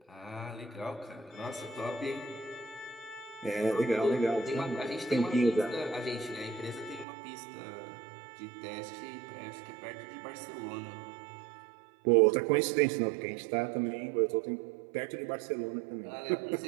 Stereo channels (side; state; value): left; drops out; at 7.1 s